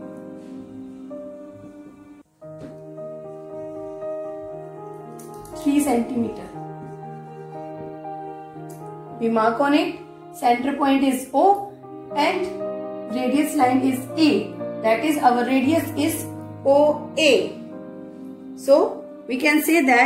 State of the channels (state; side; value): identical; both; correlation 1.00